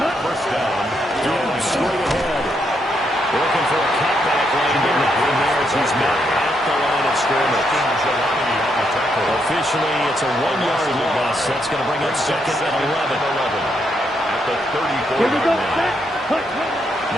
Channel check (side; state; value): both; normal; correlation 0.78